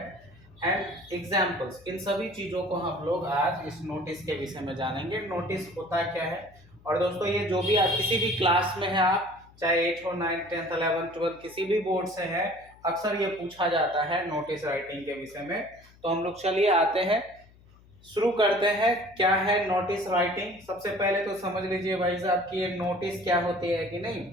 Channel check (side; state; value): left; noise; hum, 26 dB below the sound